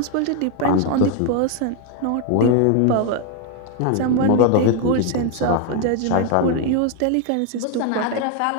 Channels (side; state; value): both; different; correlation 0.01